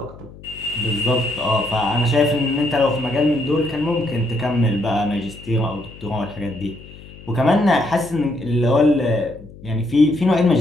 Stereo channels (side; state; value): left; noise; hum, 19 dB below the sound